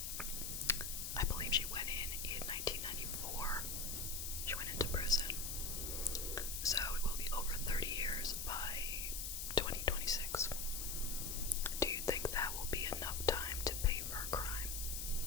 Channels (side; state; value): left; noise; hiss, 3 dB below the sound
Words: I believe she went in 1994. She went into prison. So it will be over 30 years by 2026. Do you think that will be enough time to pay for her crime?